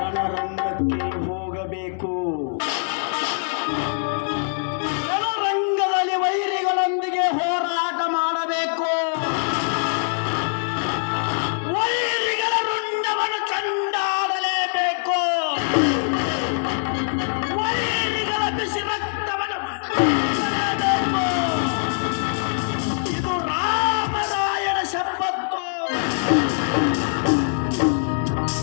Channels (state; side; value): silent; right; digital silence